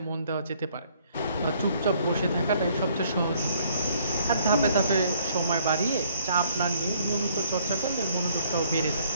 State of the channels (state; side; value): inverted; both; correlation -0.63